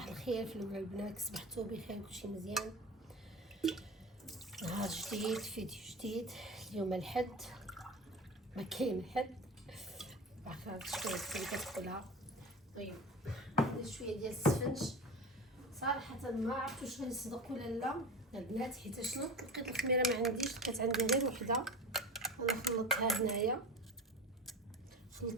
الخير في الاول البنات، صبحتوا بخير، كلشي مزيان. نهار جديد، فيديو جديد. اليوم الحد، ما كاين حد، عارفه شويه كتقولها. طيب ندير شويه ديال السفنج. صراحه ما عرفت واش غنصدق ولا لا البنات، حيت شنو لقيت الخميره ما عنديش، لقيت عندي غير وحده. انا خلطتها هنايا،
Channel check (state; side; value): normal; both; correlation 0.31